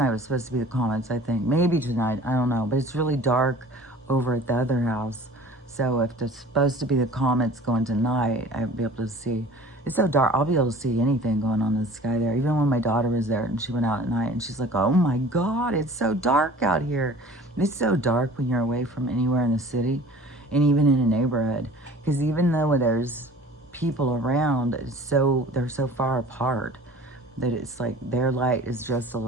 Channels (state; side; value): normal; both; correlation 0.45